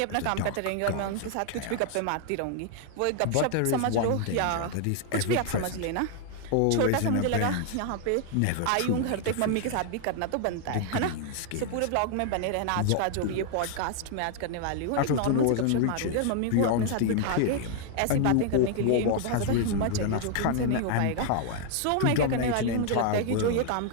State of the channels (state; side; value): different; both; correlation 0.00